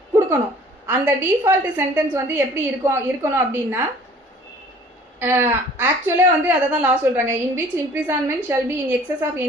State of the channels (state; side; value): normal; both; correlation 0.51